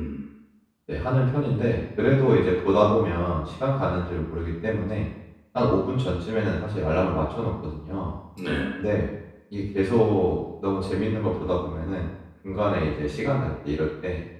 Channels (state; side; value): identical; both; correlation 1.00